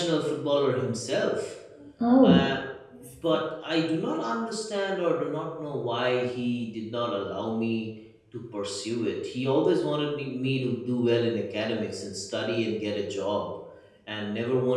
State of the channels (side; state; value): both; identical; correlation 1.00